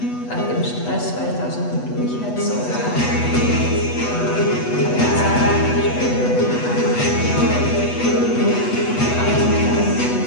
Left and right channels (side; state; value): right; late; 8.1 ms